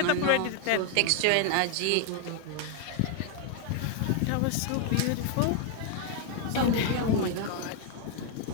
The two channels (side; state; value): both; different; correlation 0.00